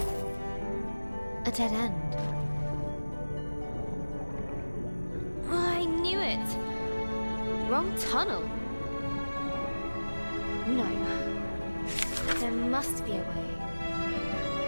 A dead end. Oh, I knew it! Wrong tunnel. No. There must be a way.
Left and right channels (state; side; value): inverted; both; correlation -1.00